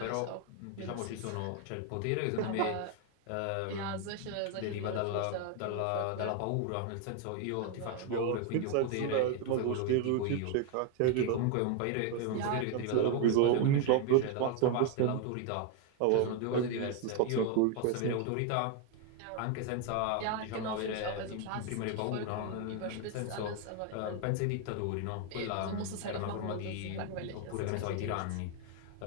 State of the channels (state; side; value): different; both; correlation 0.01